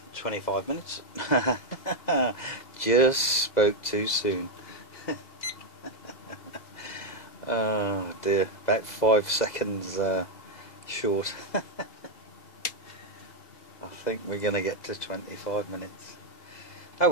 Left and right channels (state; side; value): late; right; 2.0 ms